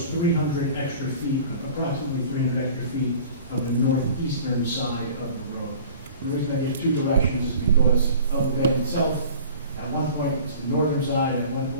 300 extra feet, approximately 300 extra feet of the northeastern side of the road. The reason I get 2 directions is because of the bend itself. At one point it's the northern side, and at one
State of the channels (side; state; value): both; inverted; correlation -0.45